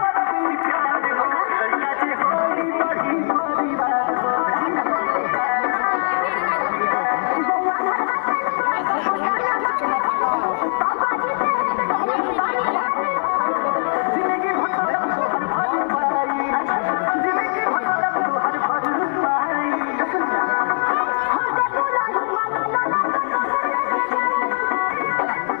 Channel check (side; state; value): right; silent; 59 dB below the other